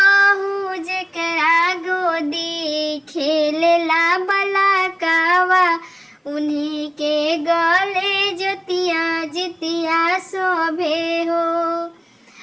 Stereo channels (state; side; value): identical; both; correlation 1.00